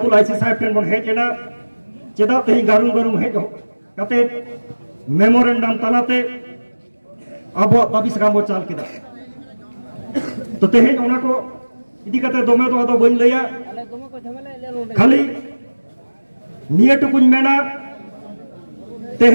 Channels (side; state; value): both; inverted; correlation -1.00